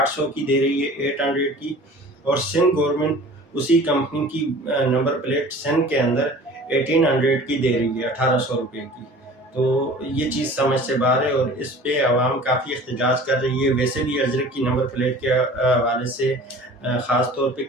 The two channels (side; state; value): both; normal; correlation 0.44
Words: کی دے رہی ہے 800 کی، اور سندھ گورنمنٹ اسی کمپنی کی نمبر پلیٹ سندھ کے اندر 1800 کی دے رہی ہے 1800 روپے کی۔ تو یہ چیز سمجھ سے باہر ہے، اور اس پہ عوام کافی احتجاج کر رہی ہے۔ ویسے بھی اجرک کی نمبر پلیٹ کے حوالے سے خاص طور پہ